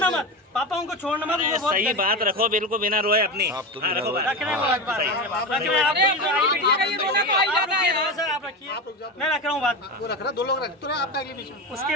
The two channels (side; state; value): both; normal; correlation 0.20